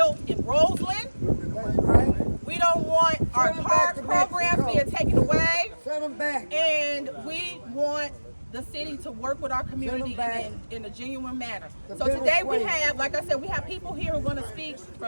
in Roseland. We don't want our park programs being taken away. Send them back. And we want the city to work with our community in a genuine manner. So today we have, like I said, we have people here who are going to speak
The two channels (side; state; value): both; inverted; correlation -1.00